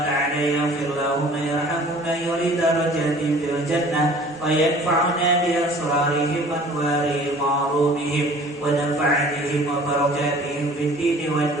تعالى يغفر لهم ويرحم من يريد درجاتهم في الجنة وينفعنا بأسرارهم وأنوارهم وعلومهم ونفعتهم وبركاتهم في الدين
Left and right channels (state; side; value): normal; both; correlation 0.49